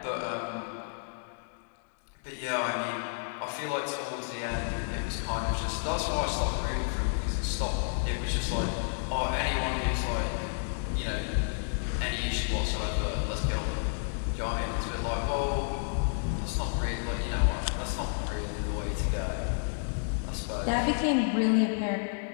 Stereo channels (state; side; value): silent; right; digital silence